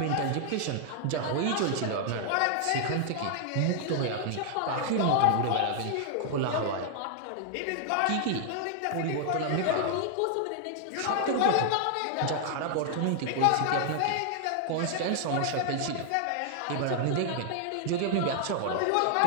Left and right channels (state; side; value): different; both; correlation 0.00